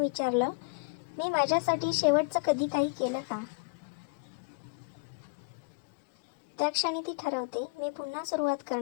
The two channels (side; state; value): right; quieter; 33.3 dB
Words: मी माझ्यासाठी शेवटचं कधी काही केलं का? त्या क्षणी ती ठरवते, मी पुन्हा सुरुवात